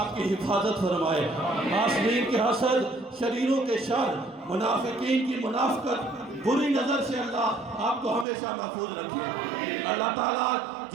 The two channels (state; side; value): drops out; left; at 8.2 s